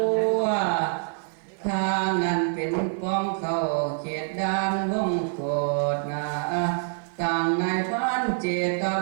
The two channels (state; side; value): silent; left; digital silence